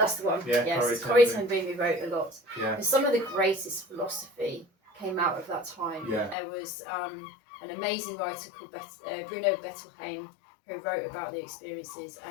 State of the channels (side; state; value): right; drops out; at 6.4 s